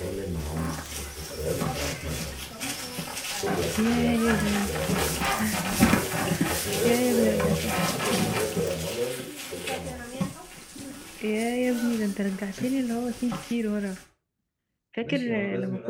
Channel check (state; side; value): identical; both; correlation 1.00